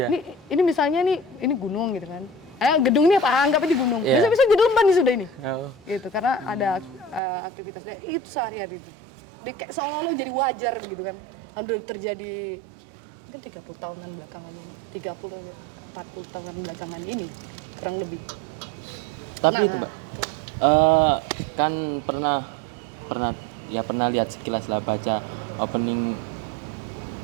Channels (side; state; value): left; drops out; at 7.2 s